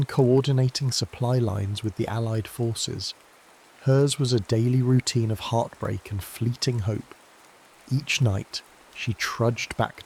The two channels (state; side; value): identical; both; correlation 1.00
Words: coordinating supply lines with the Allied forces. Hers was a daily routine of heartbreak and fleeting hope. Each night, she trudged back